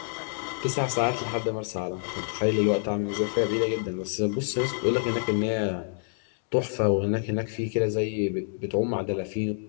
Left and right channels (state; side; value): silent; right; digital silence